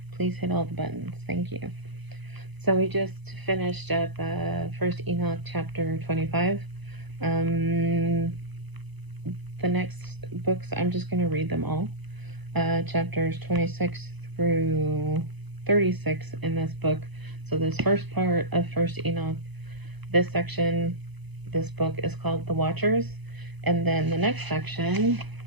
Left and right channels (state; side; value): late; left; 1.0 ms